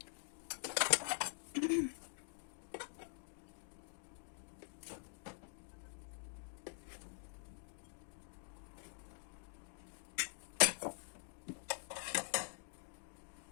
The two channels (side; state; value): right; silent; digital silence